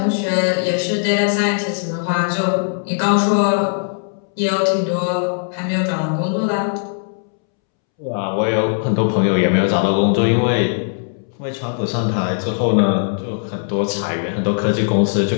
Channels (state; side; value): silent; right; 67 dB below the other